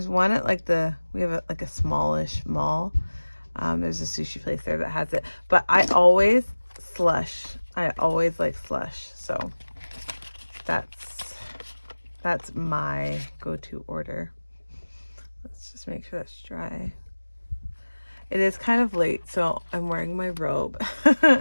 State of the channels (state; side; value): inverted; both; correlation -1.00